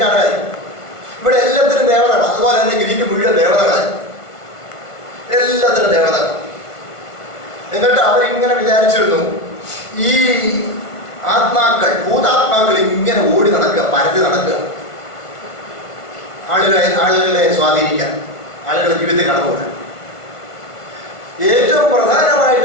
ഇവിടെ എല്ലാത്തിനും ദേവതകൾ, അതുപോലെ തന്നെ ഗ്രീക്ക് മുഴുവൻ ദേവതകളായി, എല്ലാത്തിനും ദേവതകൾ. എന്നിട്ട് അവരിങ്ങനെ വിചാരിച്ചിരുന്നു, ഈ ആത്മാക്കൾ, ഭൂതാത്മാക്കൾ ഇങ്ങനെ ഓടി നടക്കുക, പരതി നടക്കുക, ആളുകളെ സ്വാധീനിക്കാൻ, ആളുകളുടെ ജീവിതത്തിൽ കടന്നുകൂടാൻ. ഏറ്റവും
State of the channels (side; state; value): right; late; 1.5 ms